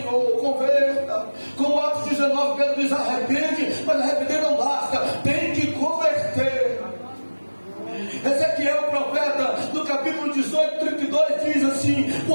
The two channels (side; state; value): both; inverted; correlation -1.00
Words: converta. Como Atos 19, Pedro diz: arrepende, mas arrepender não basta, tem que converter. Ezequiel, o profeta, no capítulo 18, 32, diz assim: